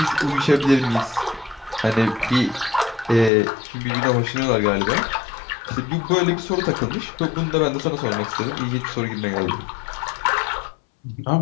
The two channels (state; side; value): drops out; right; at 3.3 s